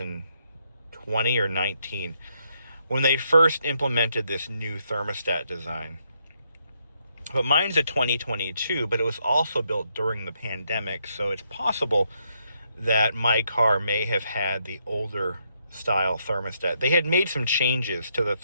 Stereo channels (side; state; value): both; inverted; correlation -0.77